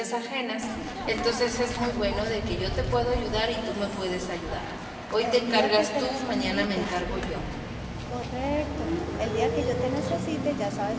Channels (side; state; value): both; identical; correlation 1.00